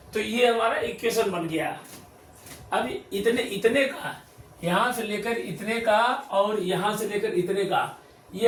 तो ये हमारा इक्वेशन बन गया। अब इतने का, यहाँ से लेकर इतने का और यहाँ से लेकर इतने का, ये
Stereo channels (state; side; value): identical; both; correlation 1.00